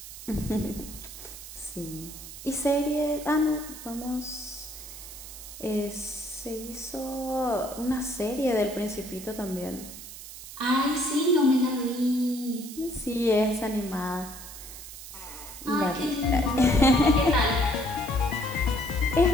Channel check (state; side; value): noise; right; hiss, 13 dB below the sound